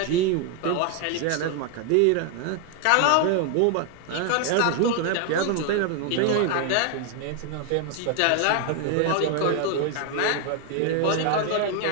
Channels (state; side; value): different; both; correlation 0.01